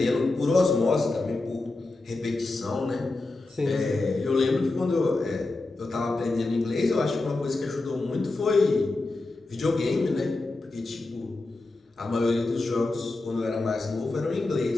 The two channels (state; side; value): quieter; right; 3.1 dB